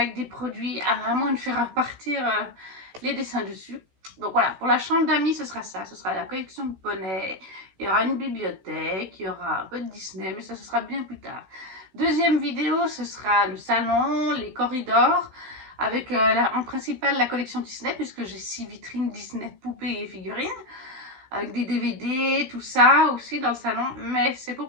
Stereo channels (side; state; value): left; late; 16 ms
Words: des produits, à moins de faire repartir les dessins dessus. Donc voilà, pour la chambre d'amis, ce sera ça. Ce sera la collection de poneys. Il y aura une bibliothèque, il y aura un peu de Disney, mais ça, ce sera bien plus tard. Deuxième vidéo, ce sera le salon, les corridors, avec en principal la collection Disney, puisque j'ai 6 vitrines Disney, poupées et figurines, avec des DVD, tout ça aussi dans le salon, mais c'est pour